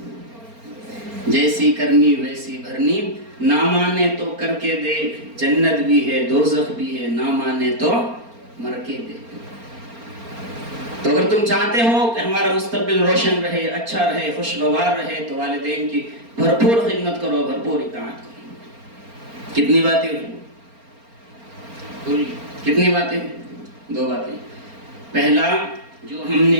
کرنی ویسی بھرنی، نہ مانے تو کر کے دے، جنت بھی ہے دوزخ بھی ہے، نہ مانے تو مر کے دے. تو اگر تم چاہتے ہو کہ ہمارا مستقبل روشن رہے، اچھا رہے، خوشگوار رہے تو والدین کی بھرپور خدمت کرو، بھرپور اطاعت کرو۔ کتنی باتیں ہوئی؟ کتنی باتیں؟ 2 باتیں۔ پہلا، جو ہم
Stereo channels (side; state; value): left; late; 4.3 ms